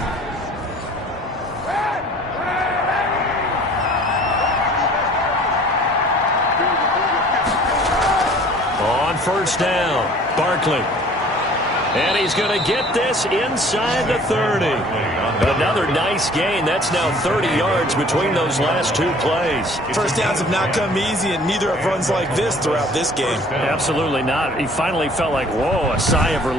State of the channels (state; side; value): normal; both; correlation 0.51